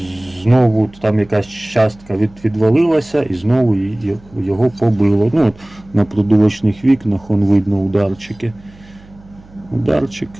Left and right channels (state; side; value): noise; right; hum, 25 dB below the sound